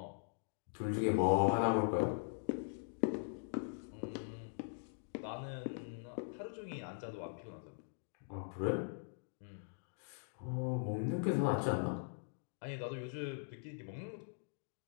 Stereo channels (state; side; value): silent; right; digital silence